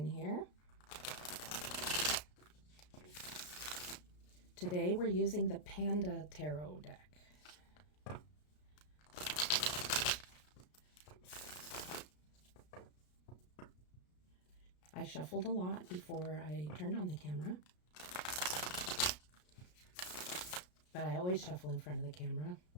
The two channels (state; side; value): late; right; 33 ms